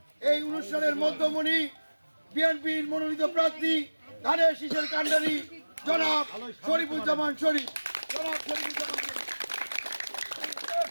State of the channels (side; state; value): both; inverted; correlation -1.00